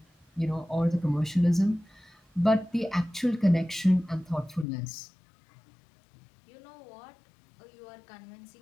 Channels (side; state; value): right; drops out; at 4.7 s